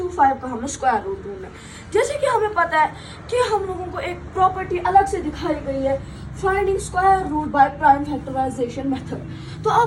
का हमें स्क्वायर रूट ढूंढना है। जैसे कि हमें पता है कि हम लोगों को एक प्रॉपर्टी अलग से दिखाई गई है, finding square root by prime factorisation method. तो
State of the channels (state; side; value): identical; both; correlation 1.00